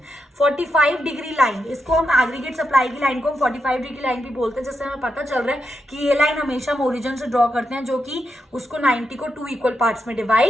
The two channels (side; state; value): both; normal; correlation 0.84